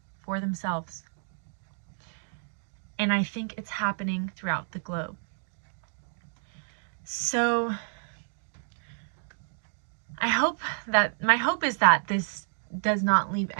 for themselves. And I think it's happening throughout the globe. So my hope is that this does not leave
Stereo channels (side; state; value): left; silent; digital silence